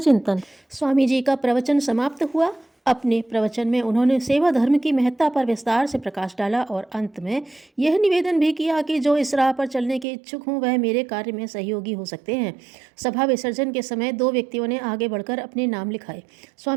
स्वामी जी का प्रवचन समाप्त हुआ। अपने प्रवचन में उन्होंने सेवा धर्म की महत्ता पर विस्तार से प्रकाश डाला और अंत में यह निवेदन भी किया कि जो इस राह पर चलने के इच्छुक हों वह मेरे कार्य में सहयोगी हो सकते हैं। सभा विसर्जन के समय 2 व्यक्तियों ने आगे बढ़कर अपने नाम लिखाए।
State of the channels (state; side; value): drops out; left; at 10.1 s